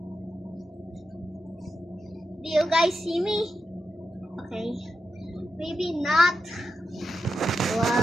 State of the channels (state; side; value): normal; both; correlation 0.87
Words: Do you guys see me? Okay. Maybe not.